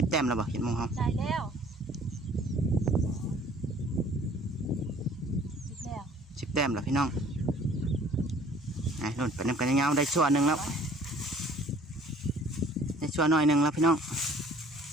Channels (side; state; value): both; normal; correlation 0.54